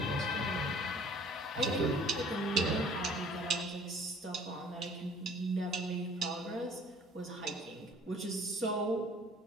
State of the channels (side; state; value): both; normal; correlation 0.52